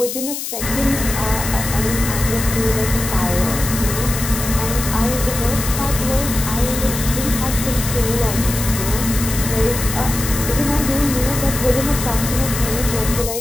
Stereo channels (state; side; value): noise; left; hiss, 6 dB below the sound